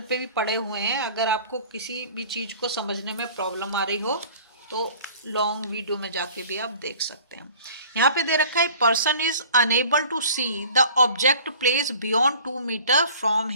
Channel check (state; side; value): inverted; both; correlation -0.47